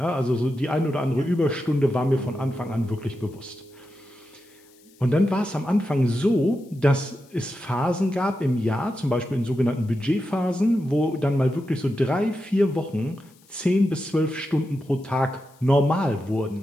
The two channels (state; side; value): noise; left; hiss, 30 dB below the sound